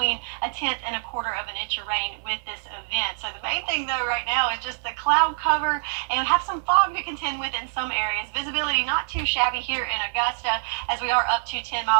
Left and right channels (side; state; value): left; silent; 61 dB below the other